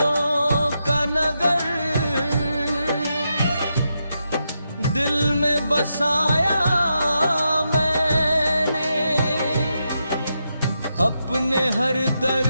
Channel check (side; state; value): both; inverted; correlation -0.85